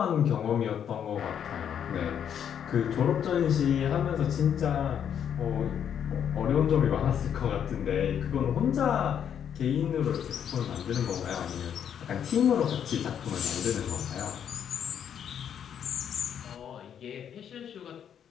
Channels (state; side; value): quieter; right; 8.7 dB